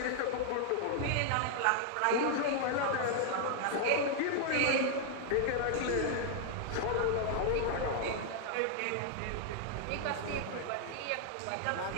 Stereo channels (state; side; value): different; both; correlation 0.00